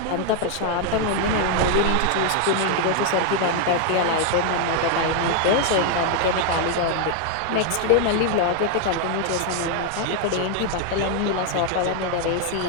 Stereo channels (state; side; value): different; both; correlation 0.00